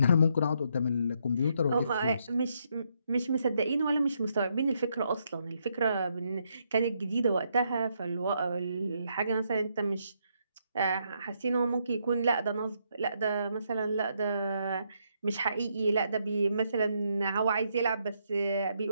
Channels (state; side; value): inverted; both; correlation -0.76